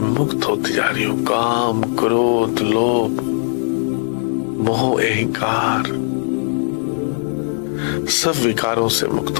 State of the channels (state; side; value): silent; right; digital silence